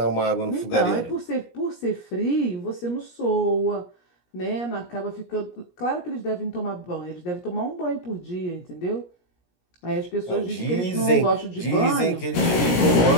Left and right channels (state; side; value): late; right; 17 ms